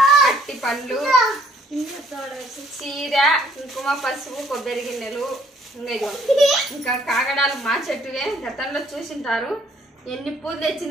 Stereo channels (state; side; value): normal; both; correlation 0.63